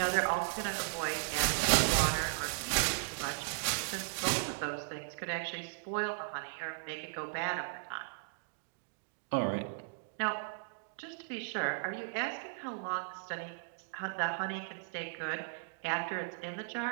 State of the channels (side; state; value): left; silent; digital silence